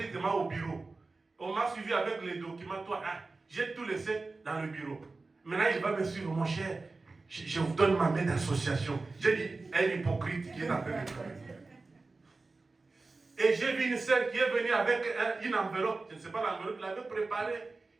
demain au bureau. On m'a suivi avec les documents, toi, hein, j'ai tout laissé dans le bureau. Maintenant, il va me suivre, mon cher, je vous donne ma main d'association. J'ai dit, un hypocrite qui est en train de travailler. Et j'ai vu une sœur qui est venue avec une enveloppe, je ne sais pas l'enveloppe, il l'avait préparée.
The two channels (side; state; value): left; quieter; 3.6 dB